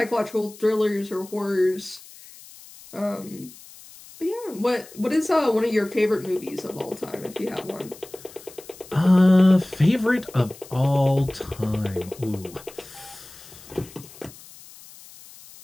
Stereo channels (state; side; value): noise; left; hiss, 20 dB below the sound